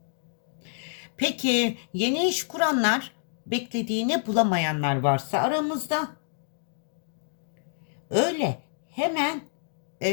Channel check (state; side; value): silent; right; digital silence